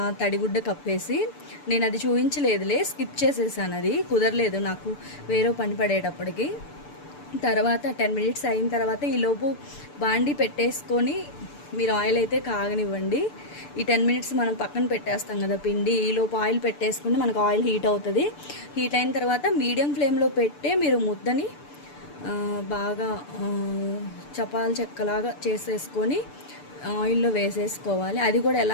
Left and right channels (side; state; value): right; late; 6.8 ms